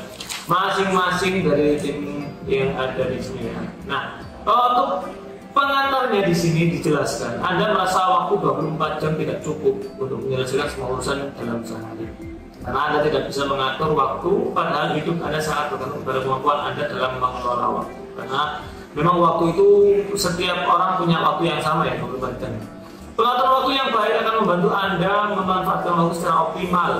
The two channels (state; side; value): identical; both; correlation 1.00